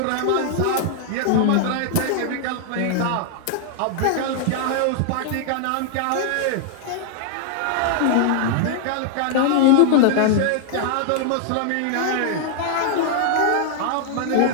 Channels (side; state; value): both; different; correlation 0.00